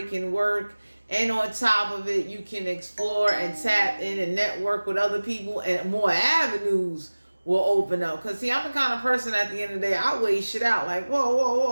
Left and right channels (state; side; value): inverted; both; correlation -1.00